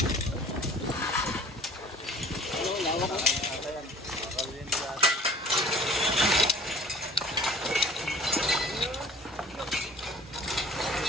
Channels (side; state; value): both; normal; correlation 0.49